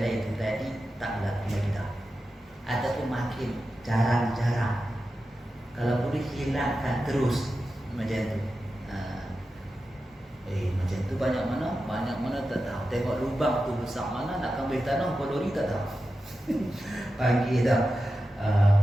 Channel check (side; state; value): both; normal; correlation 0.91